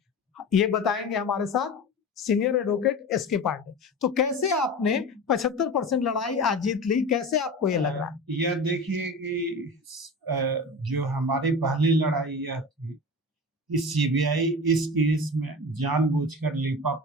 ये बताएंगे हमारे साथ सीनियर एडवोकेट एसके पांडे। तो कैसे आपने 75% लड़ाई आज जीत ली, कैसे आपको ये लग रहा है? यह देखिए कि जो हमारी पहली लड़ाई यह थी कि सीबीआई इस केस में जानबूझकर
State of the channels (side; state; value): both; normal; correlation 0.31